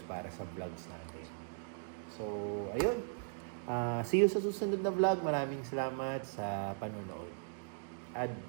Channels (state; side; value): silent; left; digital silence